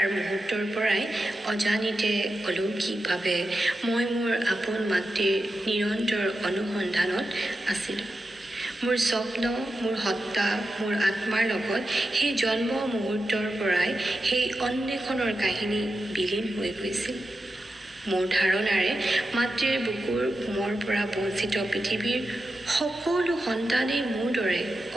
মুহূৰ্তৰ পৰাই অজানিতে অলৌকিকভাৱে মই মোৰ আপোন মাতৃৰ নিৰন্তৰ অনুসন্ধানত আছিলোঁ। মোৰ স্বপ্ন, মোৰ সত্তা, মোৰ আত্মাৰ লগত সেই জন্ম মুহূৰ্তৰ পৰাই সেই অন্বেষণৰ কাহিনী বিলীন হৈ গৈছিল। মোৰ ধাৰণাৰে মাতৃৰ বুকুৰ উমৰ পৰা বঞ্চিত পৃথিৱীৰ সকলো সন্তানেই মোৰ দৰে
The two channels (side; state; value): both; normal; correlation 0.90